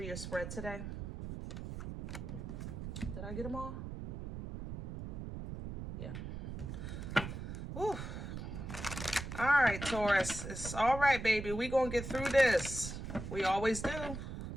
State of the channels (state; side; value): noise; right; rumble, 7 dB below the sound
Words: your spread today. Did I get them all? Yeah. Woo. All right, Taurus. It's all right, baby. We're going to get through this. We always do.